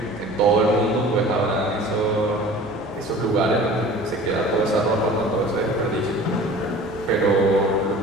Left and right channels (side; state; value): both; normal; correlation 0.43